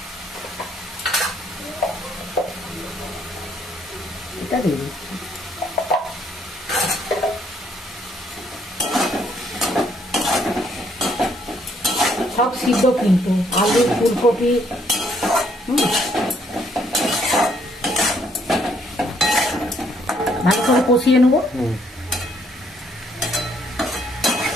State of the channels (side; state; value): both; normal; correlation 0.68